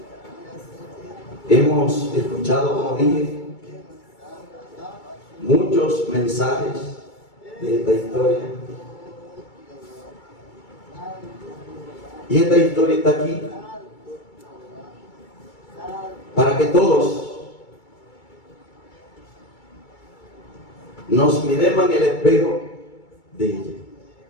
Hemos escuchado, como dije, muchos mensajes de esta historia. Y esta historia está aquí para que todos nos miremos en el espejo de ella.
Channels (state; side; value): late; right; 2.3 ms